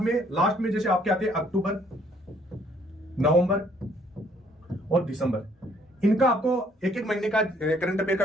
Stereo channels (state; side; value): normal; both; correlation 0.63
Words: में लास्ट में जैसे आपके आते हैं अक्टूबर, नवंबर और दिसंबर, इनका आपको एक महीने का करंट अफेयर का